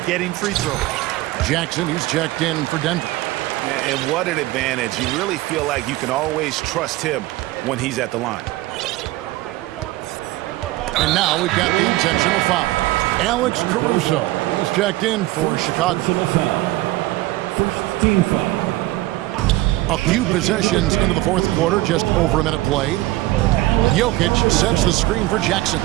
getting free throws. Jackson, he's checked in for Denver. And what an advantage. You really feel like you can always trust him when he's at the line. And now we've got the intentional foul. Alex Caruso, he's checked in for Chicago. First team foul. A few possessions into the fourth quarter, just over a minute played. Jokic sets the screen for Jackson.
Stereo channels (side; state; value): left; quieter; 18.0 dB